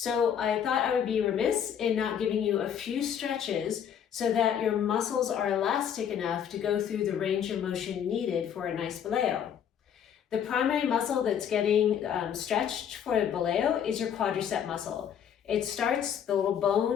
I thought I would be remiss in not giving you a few stretches so that your muscles are elastic enough to go through the range of motion needed for a nice Boleo. The primary muscle that's getting stretched for a Boleo is your quadricep muscle. It starts the little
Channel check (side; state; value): right; quieter; 8.6 dB